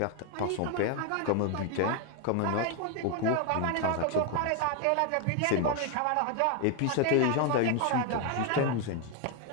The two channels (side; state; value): both; different; correlation 0.01